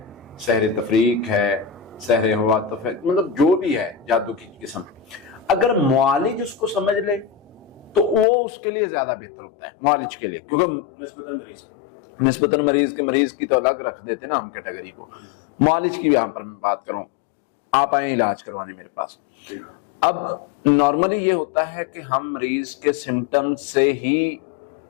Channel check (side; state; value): right; drops out; at 8.2 s